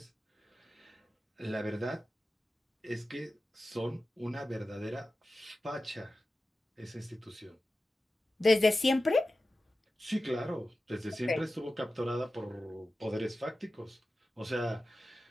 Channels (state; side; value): normal; both; correlation 0.94